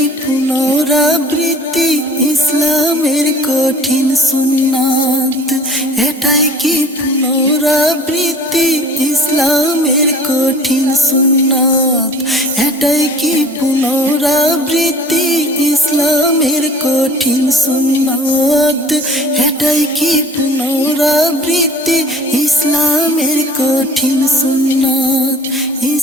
পুনরাবৃত্তি ইসলামের কঠিন সুন্নাত? এটাই কি পুনরাবৃত্তি ইসলামের কঠিন সুন্নাত? এটাই কি পুনরাবৃত্তি ইসলামের কঠিন সুন্নাত? এটাই কি পুনরাবৃত্তি ইসলামের কঠিন সুন্নাত?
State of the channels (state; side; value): normal; both; correlation 0.47